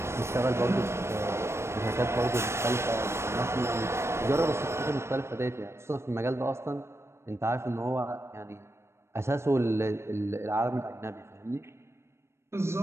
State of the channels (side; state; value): left; late; 0.13 ms